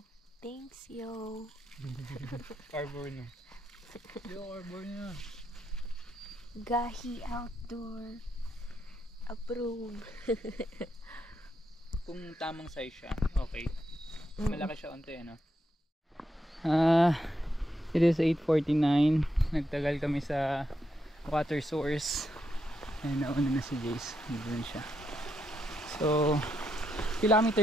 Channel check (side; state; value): both; normal; correlation 0.81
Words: Thanks, yo. Arbor na. Yo, arbor na. Gahi Outdoor. Approve. Kung tamang size siya, okay. Mm. Malaki siya onte, ano? It is 8:49. Nagtagal kami sa water source. Ayun, nauna na si Jace. Doon siya. So,